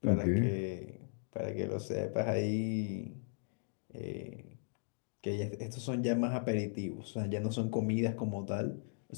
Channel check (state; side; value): silent; right; digital silence